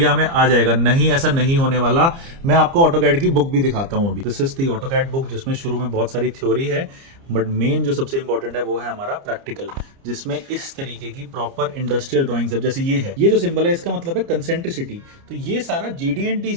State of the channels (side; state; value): left; late; 30 ms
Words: हमें आ जाएगा। नहीं, ऐसा नहीं होने वाला। मैं आपको ऑटोकैड की बुक भी दिखाता हूँ अभी। This is the AutoCAD book, जिसमें शुरू में बहुत सारी थ्योरी है, बट मेन जो सबसे इंपॉर्टेंट है वो है हमारा प्रैक्टिकल, जिसमें इस तरीके की प्रॉपर इंडस्ट्रियल ड्राइंग्स है। जैसे ये जो सिंबल है इसका मतलब है कंसेंट्रिसिटी, तो ये सारा जीडीएनटी